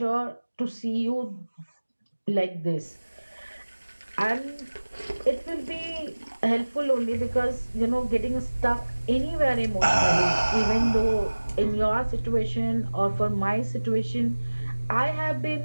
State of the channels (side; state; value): both; inverted; correlation -1.00